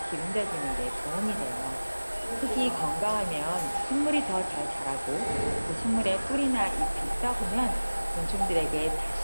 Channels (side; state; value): both; inverted; correlation -1.00